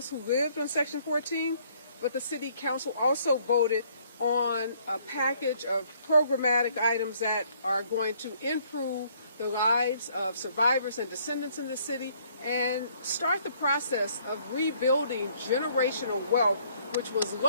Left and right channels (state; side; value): inverted; both; correlation -0.64